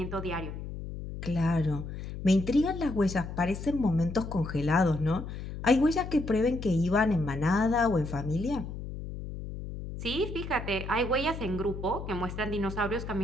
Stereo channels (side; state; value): left; noise; hum, 8 dB below the sound